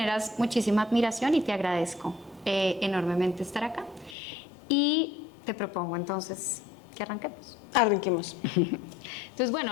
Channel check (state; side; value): drops out; right; at 4.2 s